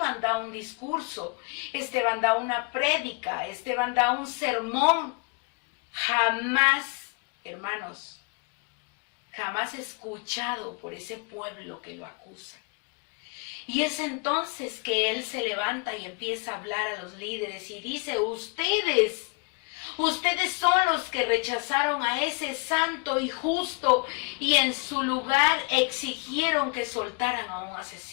da un discurso, Esteban da una prédica, Esteban da un sermón. Jamás, hermanos, jamás escuchado por ese pueblo que lo acusa. Y es entonces que él se levanta y empieza a hablar a los líderes y dice, ustedes son los que rechazaron a ese santo y justo y en su lugar exigieron que soltaran a un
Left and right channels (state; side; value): quieter; right; 31.8 dB